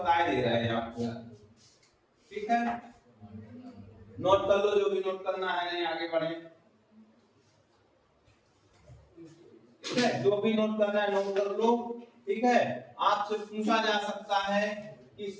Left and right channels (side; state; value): both; identical; correlation 1.00